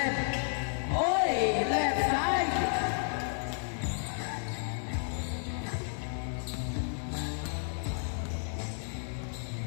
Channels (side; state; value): right; silent; 56 dB below the other